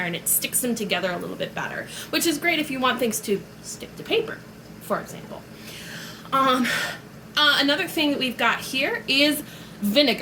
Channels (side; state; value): both; identical; correlation 1.00